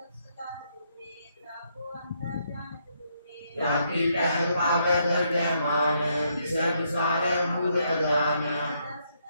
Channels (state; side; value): inverted; both; correlation -0.74